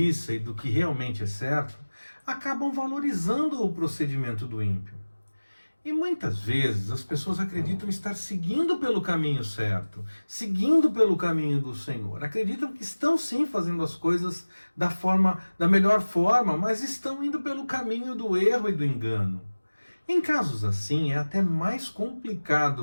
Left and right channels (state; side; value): inverted; both; correlation -1.00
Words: e do que realmente é certo, acabam valorizando o procedimento do ímpio. E muitas vezes as pessoas acreditam estar seguindo pelo caminho certo, seguindo pelo caminho do Senhor. Acreditam que estão sim fazendo as coisas da melhor forma, mas estão indo pelo caminho do erro e do engano. Em casos assim, é até mais